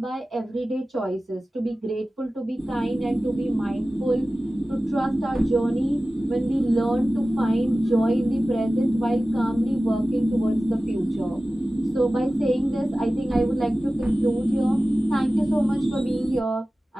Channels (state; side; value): normal; both; correlation 0.96